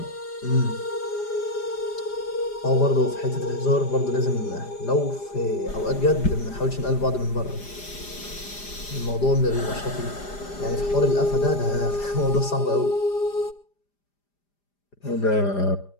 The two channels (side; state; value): right; late; 5.0 ms